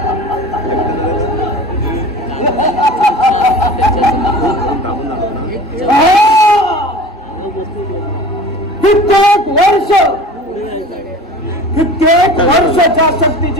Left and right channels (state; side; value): normal; both; correlation 0.39